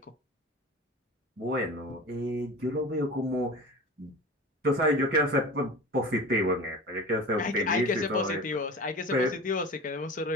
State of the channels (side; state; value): both; normal; correlation 0.35